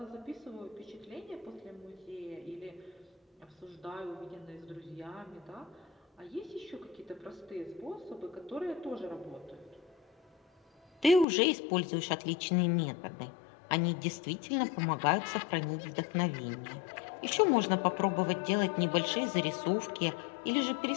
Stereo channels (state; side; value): drops out; right; at 11.2 s